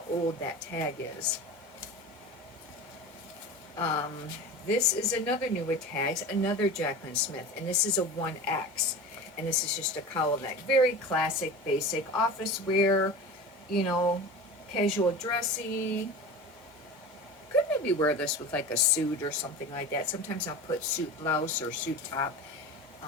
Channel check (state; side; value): normal; both; correlation 0.32